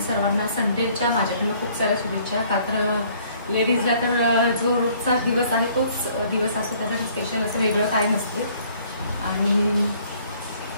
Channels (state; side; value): inverted; both; correlation -0.59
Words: संडेच्या माझ्याकडून खूप साऱ्या शुभेच्छा. का तर लेडीजला तर जो रोजचा दिवस आहे तोच दिवस असतो, त्यासाठी स्पेशल असं वेगळं काही नसते. आणि